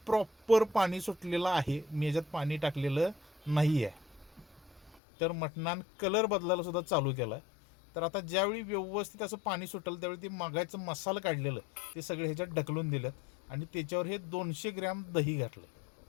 प्रॉपर पाणी सुटलेलं आहे, मी याच्यात पाणी टाकलेलं नाही आहे. तर मटणान कलर बदलायला सुद्धा चालू केला आहे. तर आता ज्यावेळी व्यवस्थित असं पाणी सुटेल त्यावेळी ते मागायचं मसाला काढलेलं ते सगळे ह्याच्यात ढकलून दिलं आणि त्याच्यावर हे 200 ग्रॅम दही घातलं.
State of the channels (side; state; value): right; drops out; at 5.0 s